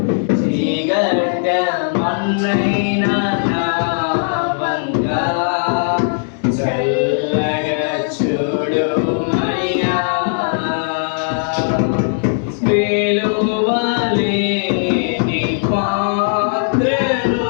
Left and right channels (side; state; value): right; silent; digital silence